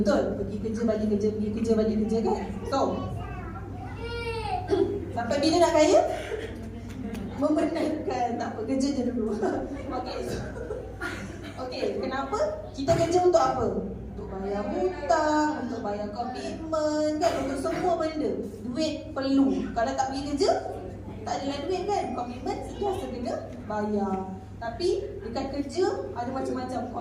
Pergi kerja, balik kerja, pergi kerja, balik kerja kan? So, sampai bila nak kaya? Membenarkan, tak apa, kerja je dulu. Okay, so, okay, kenapa? Kita kerja untuk apa? Untuk bayar hutang, untuk bayar komitmen kan? Untuk semua benda. Duit perlu. Kalau tak pergi kerja, tak adalah duit kan? Komitmen sentiasa kena bayar. Tapi dekat kerja ada macam-macam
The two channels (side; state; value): both; identical; correlation 1.00